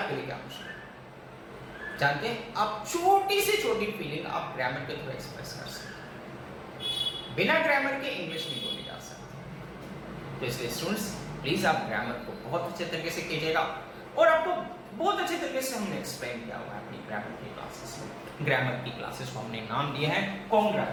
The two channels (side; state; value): both; identical; correlation 1.00